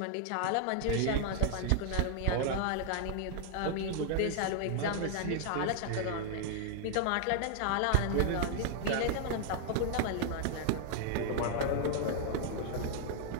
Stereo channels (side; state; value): both; different; correlation 0.00